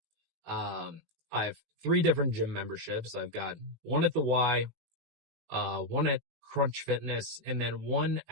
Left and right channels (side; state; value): left; late; 19 ms